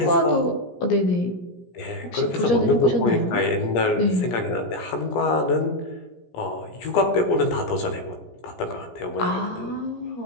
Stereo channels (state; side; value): late; right; 17 ms